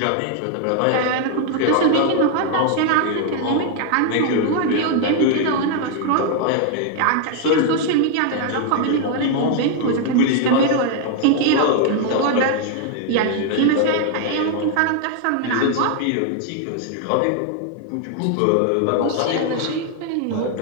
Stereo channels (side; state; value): both; different; correlation 0.00